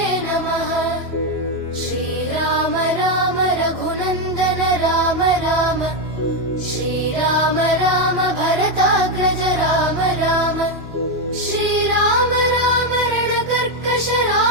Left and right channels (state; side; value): late; left; 2.9 ms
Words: नमः श्रीराम राम रघुनन्दन राम राम श्रीराम राम भरताग्रज राम राम श्रीराम राम रणकर्कश